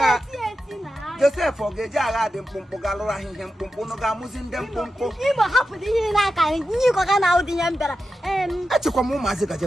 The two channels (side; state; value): both; normal; correlation 0.90